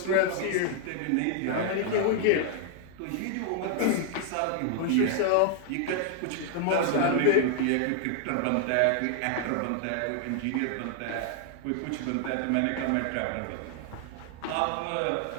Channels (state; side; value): different; both; correlation 0.00